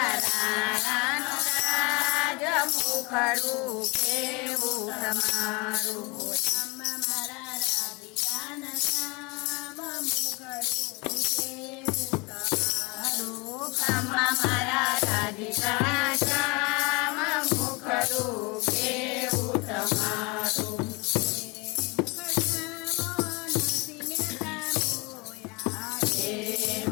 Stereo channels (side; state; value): right; quieter; 27.6 dB